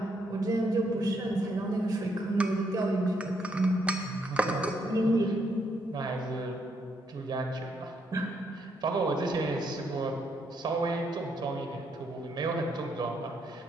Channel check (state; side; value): normal; both; correlation 0.75